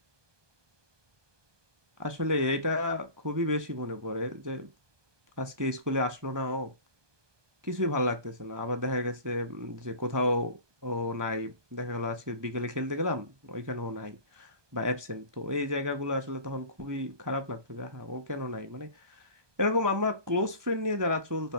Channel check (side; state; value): left; late; 1.2 ms